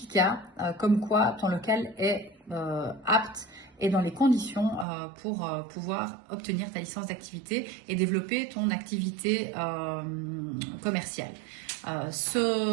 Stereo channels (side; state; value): left; drops out; at 4.9 s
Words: comme quoi ton local est apte et dans les conditions pour pouvoir obtenir ta licence d'activité et développer ton activité commerciale.